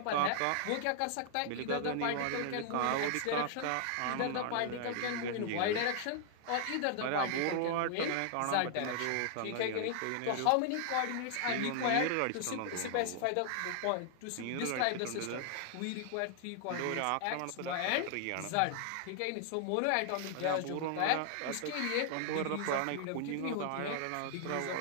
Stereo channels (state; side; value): different; both; correlation 0.00